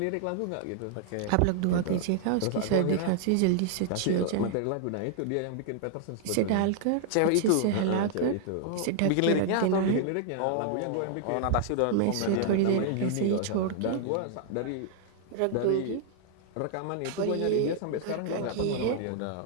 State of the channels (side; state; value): both; different; correlation 0.00